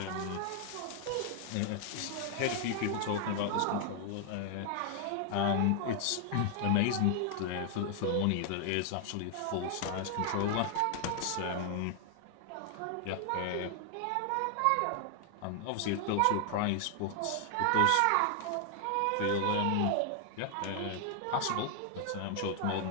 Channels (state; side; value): different; both; correlation 0.00